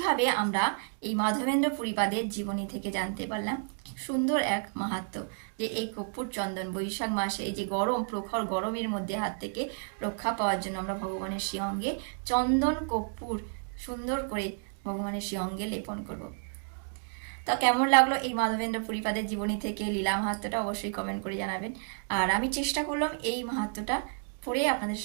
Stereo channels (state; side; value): silent; left; 57 dB below the other